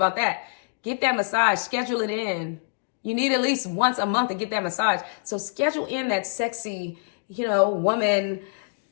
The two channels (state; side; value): silent; right; digital silence